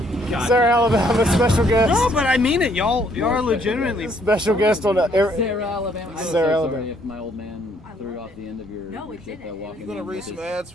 God. Sarah Alabama, special guest. No, but I mean it. Y'all are legitimately. Special guest on Sarah Alabama. I'm Sarah so Alabama. sorry if my old man threw off the end of your shit though, walking You gonna in read with some his- ads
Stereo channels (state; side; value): normal; both; correlation 0.66